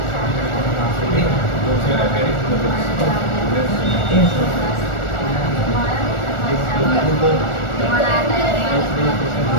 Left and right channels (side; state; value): right; late; 1.4 ms